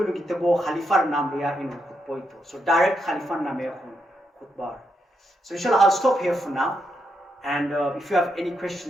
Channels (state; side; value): normal; both; correlation 0.81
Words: gitabo Khalifar name ya khutbah. So direct Khalifar name khutbah. So inshallah, I'll stop here for now. And if you have any